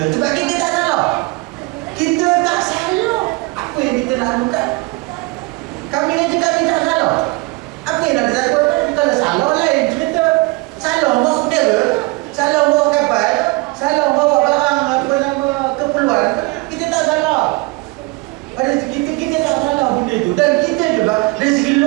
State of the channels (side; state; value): left; quieter; 24.8 dB